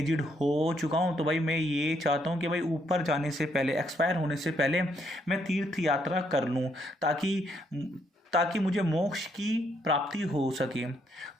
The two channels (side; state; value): both; normal; correlation 0.73